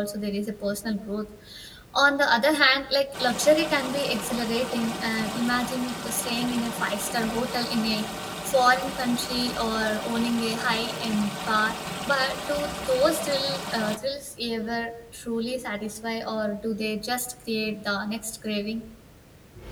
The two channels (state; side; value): identical; both; correlation 1.00